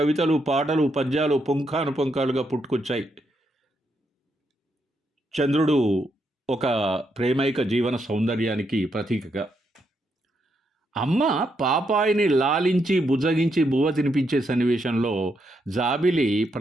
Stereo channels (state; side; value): normal; both; correlation 0.79